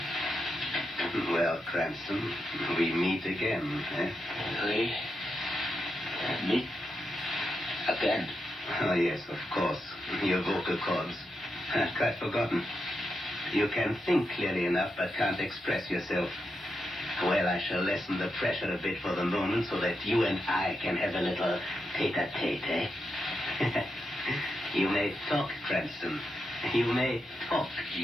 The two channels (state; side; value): normal; both; correlation 0.85